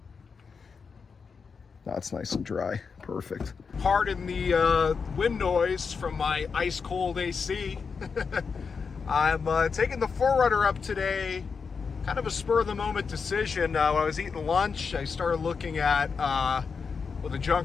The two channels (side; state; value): right; quieter; 5.5 dB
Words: That's nice and dry. Perfect. Pardon the wind noise from my ice cold AC. I'm taking the 4Runner up today. Kind of a spur of the moment decision. When I was eating lunch, I started looking at what the